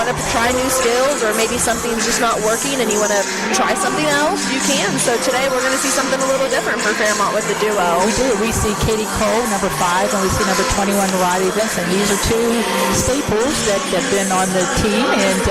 to try new skills, or maybe something's just not working and you want to try something else, you can. So today we're going to see something a little different for Fairmont with the duo. We do. We see Katie Cole, number 5, and we see number 21, Riley Vinson. These are 2 staples that have been on the team and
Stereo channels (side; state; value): both; identical; correlation 1.00